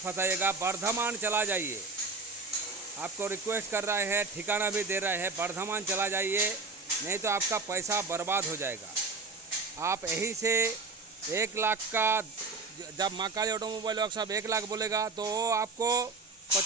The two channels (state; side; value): quieter; left; 4.1 dB